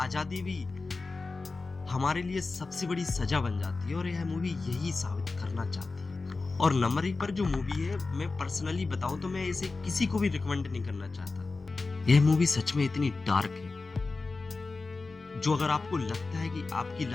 भी हमारे लिए सबसे बड़ी सजा बन जाती है, और यह मूवी यही साबित करना चाहती है। और नंबर 1 पर जो मूवी है, मैं पर्सनली बताऊं तो मैं इसे किसी को भी रिकमेंड नहीं करना चाहता। यह मूवी सच में इतनी डार्क है, जो अगर आपको लगता है कि आपकी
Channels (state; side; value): quieter; right; 3.8 dB